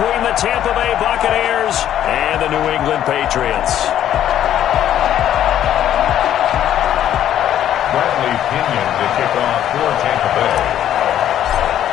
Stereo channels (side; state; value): right; quieter; 11.1 dB